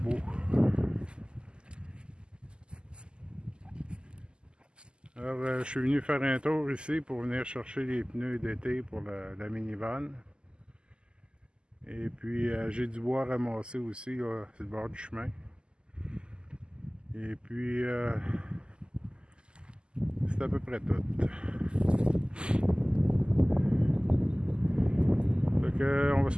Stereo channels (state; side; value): late; left; 0.049 ms